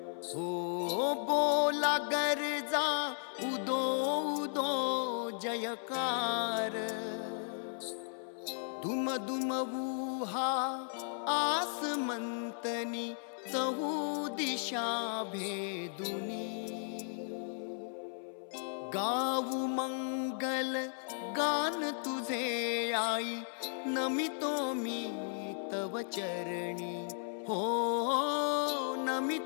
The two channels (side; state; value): right; silent; 54 dB below the other